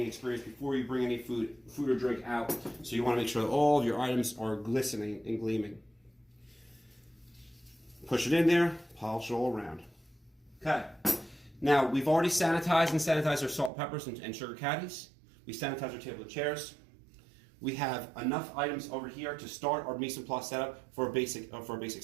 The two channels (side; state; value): left; drops out; at 13.7 s